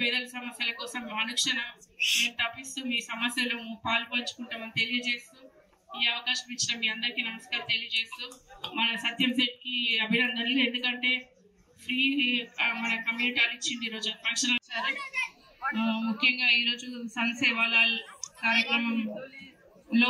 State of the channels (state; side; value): identical; both; correlation 1.00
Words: పేదల సమస్యల కోసం అనుక్షణం మేము తప్పిస్తూ మీ సమస్యలు పాల్పంచుకుంటామని తెలియజేస్తూ ఈ అవకాశం ఇచ్చిన మీ అందరికీ నమస్కారం తెలియజేస్తూ మన సత్యం సెట్ కి అభినందనలు. ఎందుకంటే ఫ్రీ మన కమ్యూనిటీ హాల్ ఇచ్చింది ఈరోజు ఫంక్షన్. ముఖ్యంగా ఈరోజు సన్ సేవాలాల్